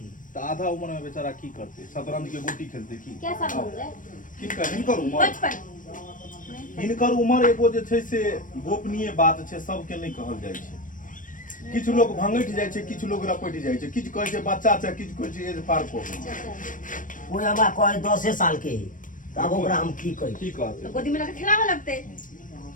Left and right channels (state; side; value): late; right; 0.38 ms